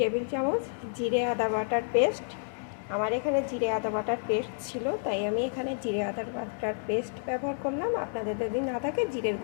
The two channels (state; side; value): silent; right; 58 dB below the other